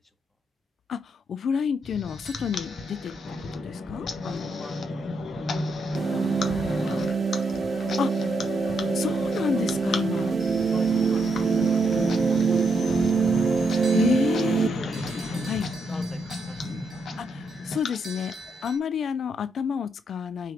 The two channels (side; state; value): both; normal; correlation 0.79